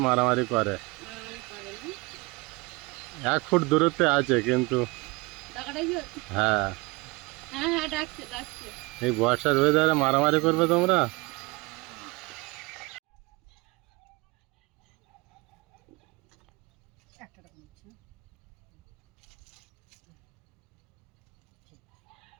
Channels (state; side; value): quieter; left; 25.0 dB